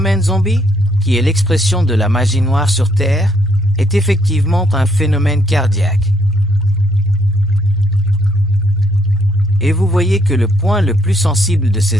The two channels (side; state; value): both; normal; correlation 0.71